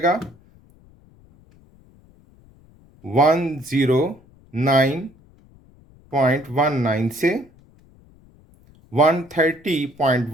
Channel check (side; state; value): left; noise; rumble, 28 dB below the sound